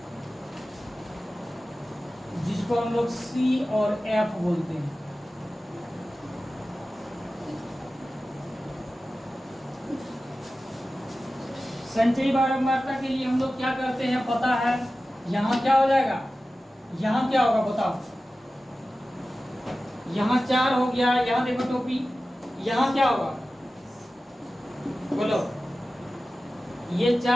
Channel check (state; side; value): normal; both; correlation 0.95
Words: जिसको हम लोग C और F बोलते हैं। संचयी बारंबारता के लिए हम लोग क्या करते हैं पता है। यहाँ क्या हो जाएगा, यहाँ क्या होगा बताओ। यहाँ 4 हो गया, यहाँ देखो टोपी, यहाँ क्या होगा बोलो। ये